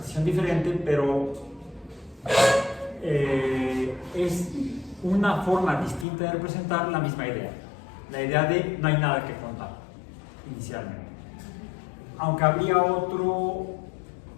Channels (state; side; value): drops out; right; at 6.1 s